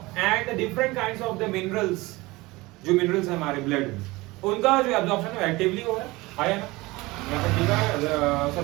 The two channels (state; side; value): quieter; left; 21.4 dB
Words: the different kinds of the minerals, जो मिनरल्स है हमारे ब्लड में, उनका जो एब्जॉर्प्शन है एक्टिवली हो रहा है ना। यहाँ पर लिखा है